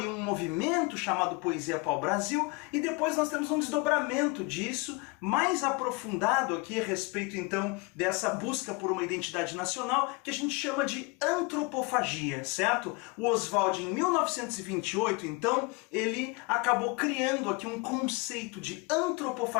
um movimento chamado Poesia Pau-Brasil, e depois nós temos um desdobramento disso, mais aprofundado aqui a respeito então dessa busca por uma identidade nacional, que a gente chama de antropofagia, certo? O Oswald, em 1928, então, ele acabou criando aqui um conceito de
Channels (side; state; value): right; quieter; 28.4 dB